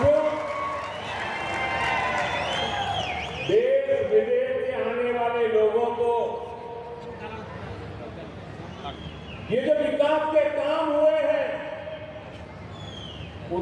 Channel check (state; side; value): identical; both; correlation 1.00